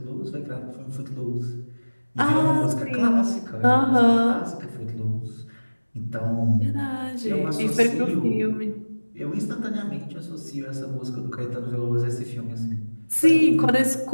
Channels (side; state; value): both; inverted; correlation -1.00